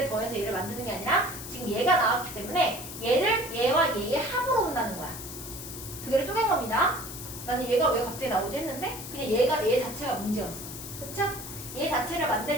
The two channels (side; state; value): left; noise; hiss, 10 dB below the sound